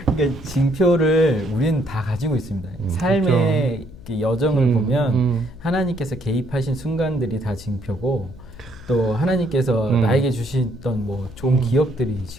그러니까 징표를 우리는 다 가지고 있습니다. 삶의 그 여정을 보면 하나님께서 개입하신 순간들이 다 징표고 또 하나님께서 나에게 주시던 뭐 좋은 기억들이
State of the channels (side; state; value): left; noise; hum, 19 dB below the sound